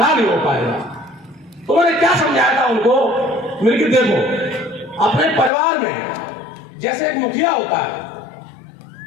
नहीं हो पाएगा। तो मैंने क्या समझाया था उनको, मेरे को देखो अपने परिवार में जैसे एक मुखिया होता है,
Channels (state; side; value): drops out; right; at 5.5 s